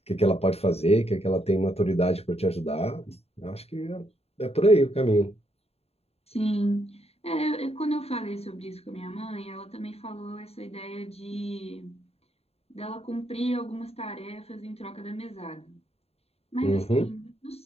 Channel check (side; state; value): right; late; 0.29 ms